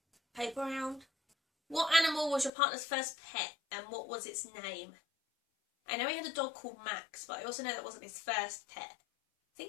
paper round. What animal was your partner's first pet and what was its name? I know he had a dog called Max, but I also know that wasn't his first pet. I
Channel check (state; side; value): drops out; right; at 2.5 s